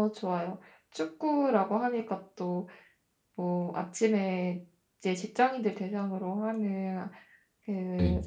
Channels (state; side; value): identical; both; correlation 1.00